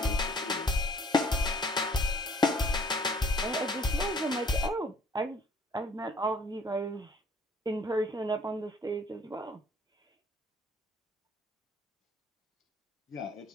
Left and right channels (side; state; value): both; normal; correlation 0.58